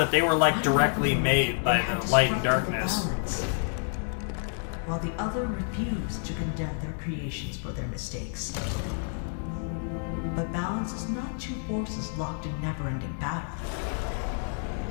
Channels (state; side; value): silent; right; 59 dB below the other